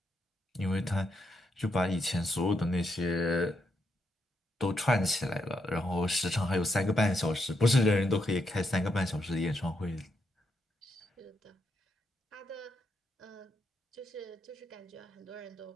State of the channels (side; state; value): both; normal; correlation 0.80